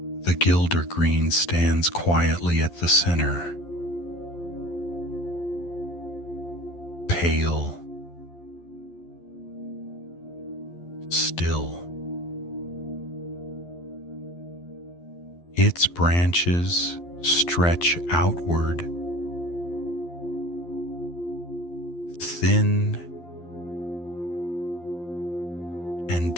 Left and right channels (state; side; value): late; right; 12 ms